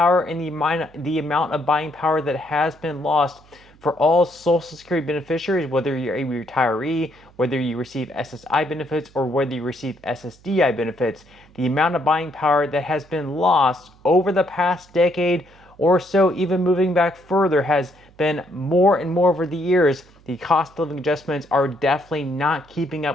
and the amount of buying power that has been lost for all Social Security beneficiaries, whether you're a retiree, whether you receive SSI benefits, or whether you receive SSDI benefits. The amount of buying power that has been lost over the past decade or so, even moving back further, has been more and more over the years. The cost of living adjustments are definitely not keeping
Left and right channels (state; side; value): noise; right; hum, 27 dB below the sound